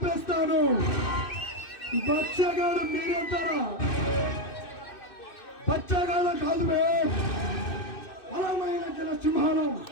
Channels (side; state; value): right; late; 2.6 ms